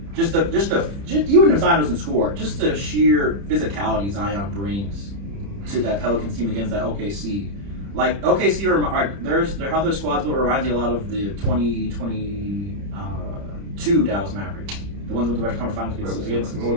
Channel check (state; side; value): late; left; 30 ms